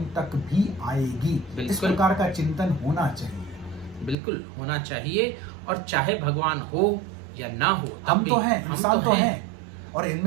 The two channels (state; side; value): drops out; left; at 4.2 s